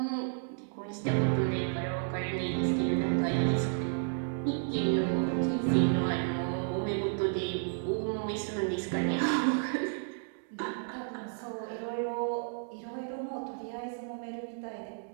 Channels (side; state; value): left; silent; digital silence